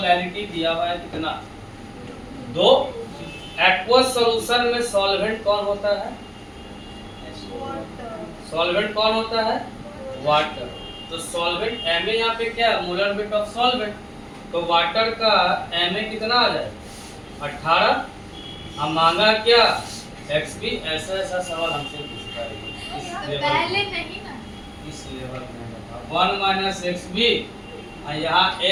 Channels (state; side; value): identical; both; correlation 1.00